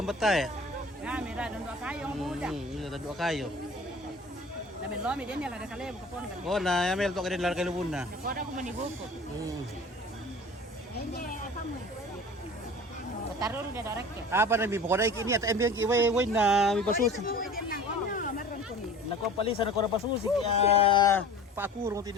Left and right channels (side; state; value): both; normal; correlation 0.42